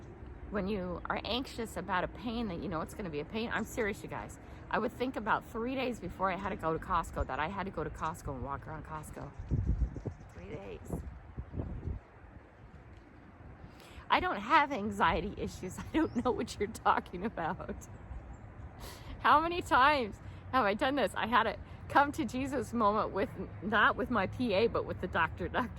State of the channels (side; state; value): both; identical; correlation 1.00